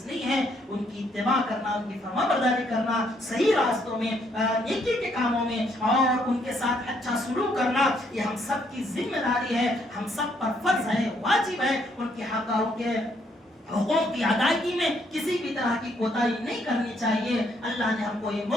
نہیں ہے. ان کی اتباع کرنا, ان کی فرمانبرداری کرنا, صحیح راستوں میں, نیکی کے کاموں میں, اور ان کے ساتھ اچھا سلوک کرنا, یہ ہم سب کی ذمہ داری ہے, ہم سب پر فرض ہے, واجب ہے. ان کے حق اور ان کے حقوق کی ادائیگی میں کسی بھی طرح کی کوتاہی نہیں کرنی چاہیے. اللہ نے ہم کو یہ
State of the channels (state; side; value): normal; both; correlation 0.70